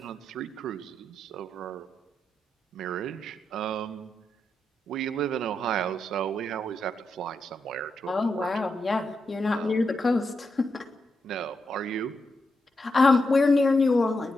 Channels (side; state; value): both; normal; correlation 0.84